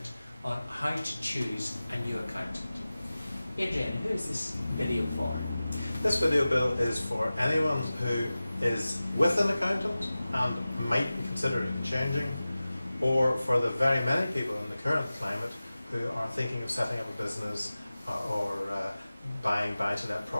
on how to choose a new accountant. Adrian, who is this video for? This video, Bill, is for anyone who is with an accountant and might be considering changing, or for the very many people in the current climate who are thinking of setting up a business or buying buy-to-let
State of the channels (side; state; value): both; inverted; correlation -0.96